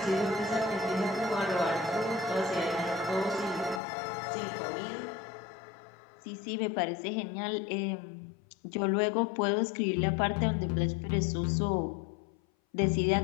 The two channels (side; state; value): right; drops out; at 3.8 s